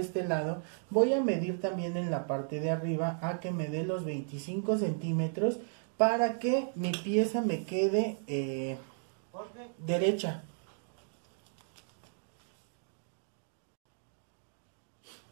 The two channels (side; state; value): left; silent; digital silence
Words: lado voy a medir también en la parte de arriba a que me dé los 25 centímetros para que mi pieza me quede derecha.